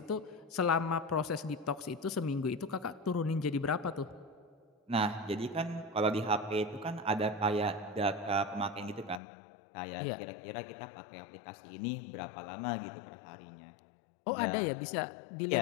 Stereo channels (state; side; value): drops out; right; at 9.2 s